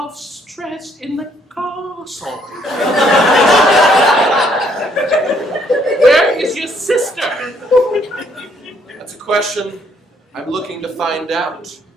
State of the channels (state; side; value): normal; both; correlation 0.67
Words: stress in the castle. Where is your sister? That's a question I'm looking to find out.